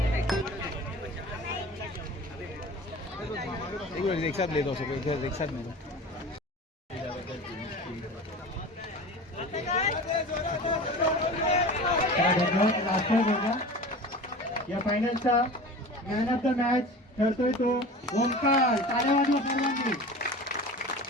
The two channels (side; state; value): both; normal; correlation 0.36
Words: एक साथ ले दो सब एक साथ ले दो। या फायनलचा मॅन ऑफ द मॅच ठरतोय तो ओंकार। टाळ्या वाजवा सर्वांनी।